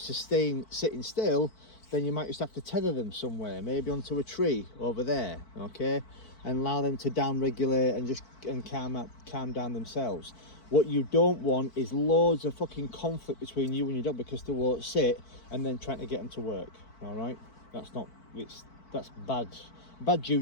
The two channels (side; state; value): right; late; 4.5 ms